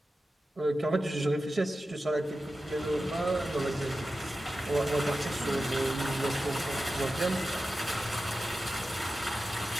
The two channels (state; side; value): normal; both; correlation 0.93